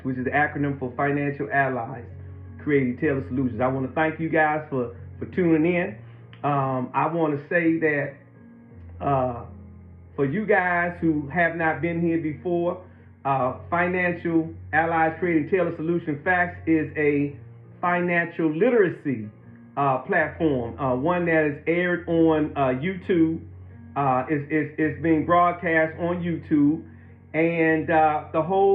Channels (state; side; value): identical; both; correlation 1.00